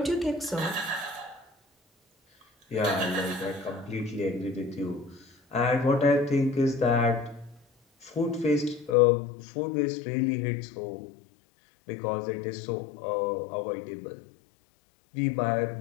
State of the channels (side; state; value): right; drops out; at 9.0 s